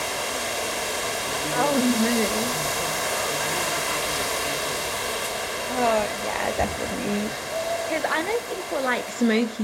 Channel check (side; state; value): both; identical; correlation 1.00